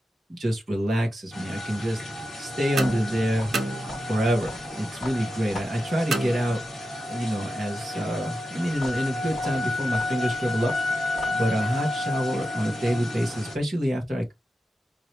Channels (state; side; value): normal; both; correlation 0.90